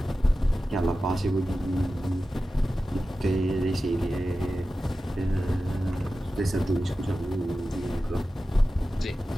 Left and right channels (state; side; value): normal; both; correlation 0.94